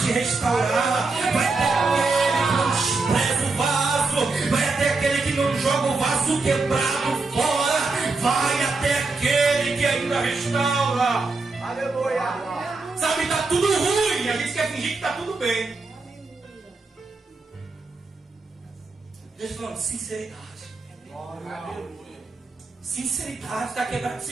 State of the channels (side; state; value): left; quieter; 3.8 dB